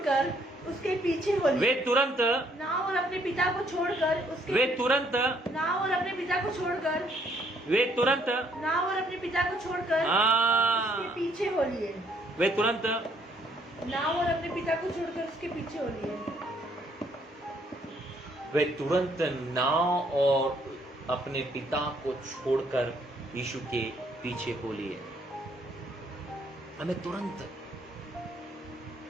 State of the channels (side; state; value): both; normal; correlation 0.67